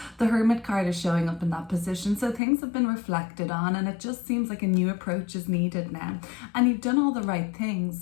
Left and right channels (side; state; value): right; drops out; at 2.4 s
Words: the Hermit card is showing up in that position. So things have been reflected on, and it just seems like a new approach is needed now. And you've done all the right things.